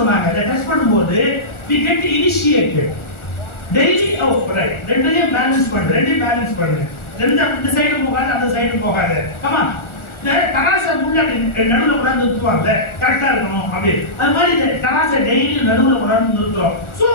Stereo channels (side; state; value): right; late; 1.4 ms